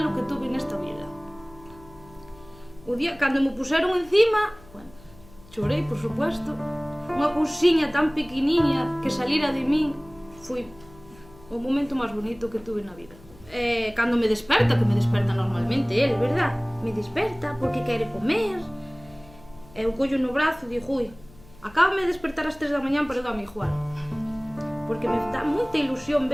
que tuve nesta vida. O día, cando me puseron encima, bueno, chorei, por supuesto, unha cousiña tan pequeniña que salira de min, foi o momento máis bonito que tuve na vida. Cando me desperta, que me desperta normalmente el, verdad? Me desperta porque quere comer, eu collo no brazo e digo, ui, acábame de despertar ás 3 da mañán, pero dame igual. Porque me dá moita ilusión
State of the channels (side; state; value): left; noise; hum, 23 dB below the sound